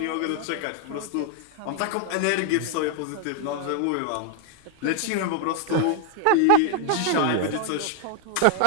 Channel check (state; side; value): different; both; correlation 0.00